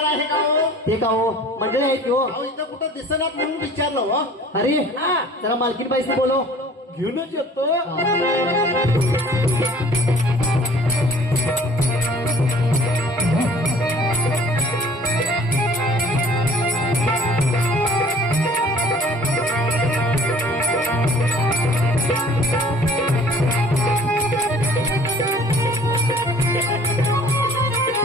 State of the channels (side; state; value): both; normal; correlation 0.51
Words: आहे का हो? ते का हो मंडळी आहेत की हो. अहो इथं कुठं दिसणार म्हणून विचारलं हो. अरे जरा मालकीन बाईसनी बोलो. घेऊनच येतो.